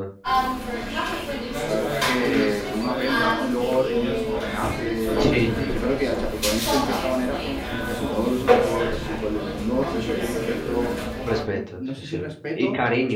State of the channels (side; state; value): both; identical; correlation 1.00